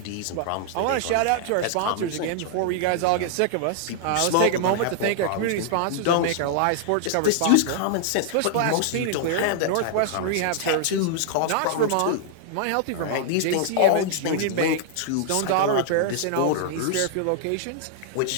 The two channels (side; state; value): both; different; correlation -0.01